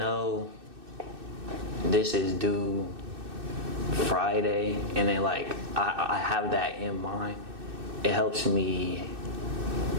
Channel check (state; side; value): late; left; 2.6 ms